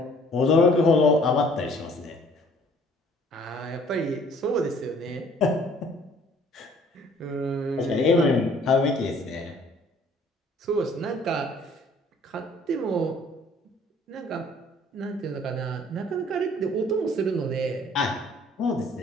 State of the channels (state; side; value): normal; both; correlation 0.57